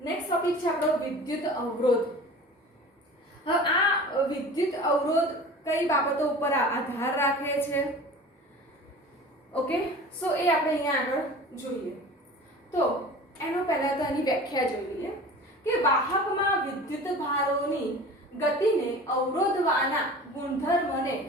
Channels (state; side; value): normal; both; correlation 0.39